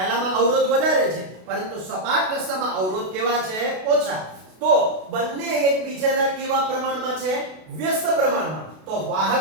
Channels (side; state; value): left; late; 32 ms